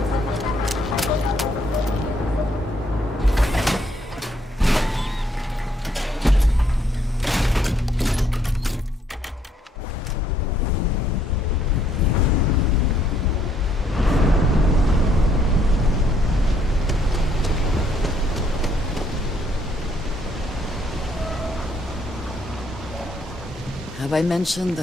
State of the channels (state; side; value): normal; both; correlation 0.69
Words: Have I mentioned